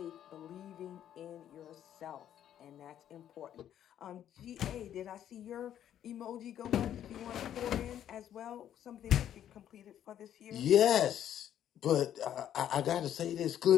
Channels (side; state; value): right; quieter; 10.6 dB